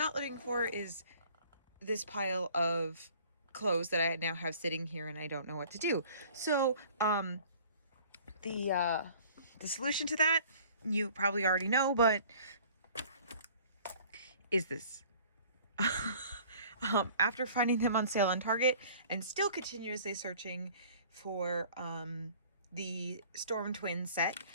living for is this pile of clothes that I now have sitting here and I don't know what to do. So, the solution to that, you probably already know, but is this. After finding them on sale on Target and still continuously searching for the Storm Twin set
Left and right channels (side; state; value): both; inverted; correlation -0.51